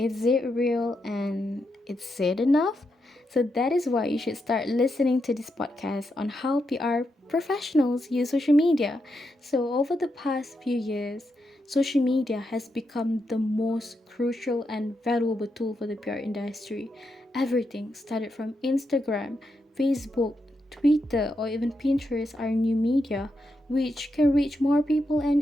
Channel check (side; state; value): both; normal; correlation 0.84